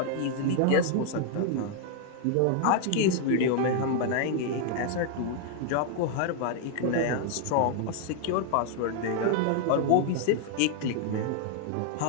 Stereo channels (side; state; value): both; different; correlation 0.00